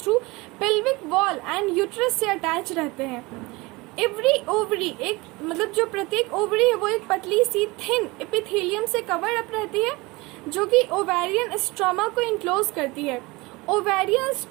pelvic wall and uterus से अटैच रहते हैं। एवरी ओवरी, एक मतलब जो प्रत्येक ओवरी है वो एक पतली सी थिन एपिथेलियम से कवर अप रहती है, जो कि ओवेरियन स्ट्रोमा को इनक्लोज करती है। ओवेरियन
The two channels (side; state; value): left; quieter; 23.4 dB